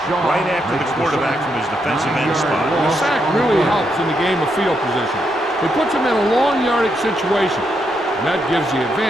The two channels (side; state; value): both; normal; correlation 0.80